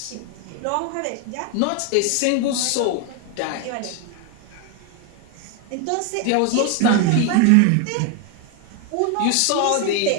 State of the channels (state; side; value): different; both; correlation 0.01